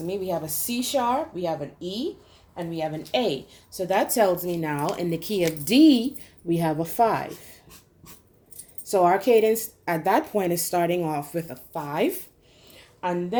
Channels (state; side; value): identical; both; correlation 1.00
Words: me we have a C sharp, we have an E, and we have an A. So that tells me now in the key of D, we have a 5. So our cadence at that point is starting off with a 5. And